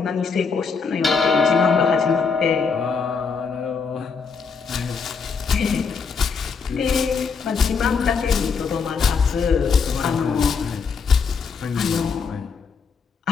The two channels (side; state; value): right; quieter; 5.4 dB